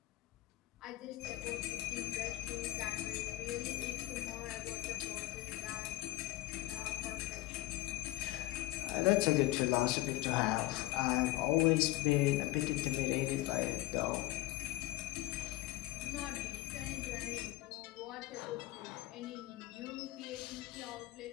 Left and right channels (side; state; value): right; quieter; 18.1 dB